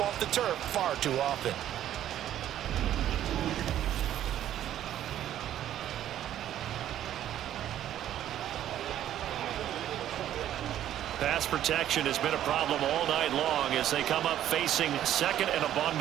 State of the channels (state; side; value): quieter; left; 11.6 dB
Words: the turf far too often. Pass protection has been a problem all night long as they come up facing 2nd and a